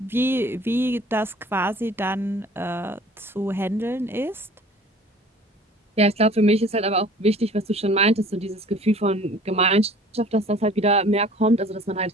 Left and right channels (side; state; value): both; normal; correlation 0.49